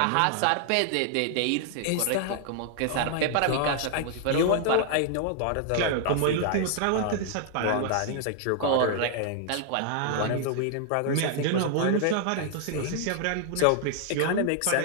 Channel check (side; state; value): both; different; correlation 0.00